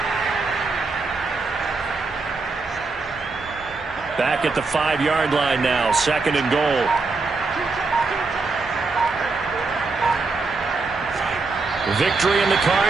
Back at the 5-yard line now, 2nd and goal. Victory in the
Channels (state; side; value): quieter; left; 3.9 dB